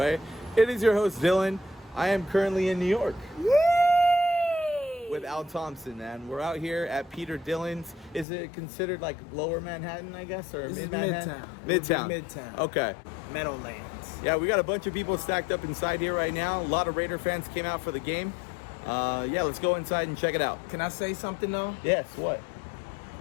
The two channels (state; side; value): drops out; right; at 8.2 s